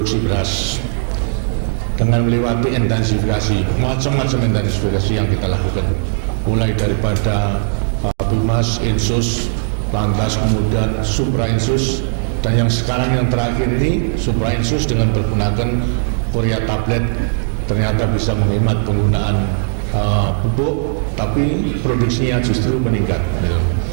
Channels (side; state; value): left; silent; digital silence